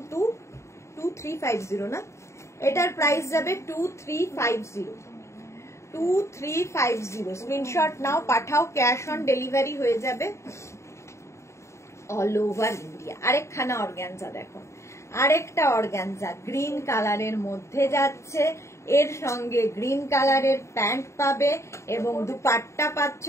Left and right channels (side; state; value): right; late; 0.14 ms